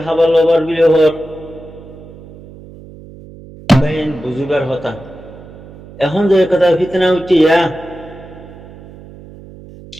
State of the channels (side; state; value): right; noise; hum, 18 dB below the sound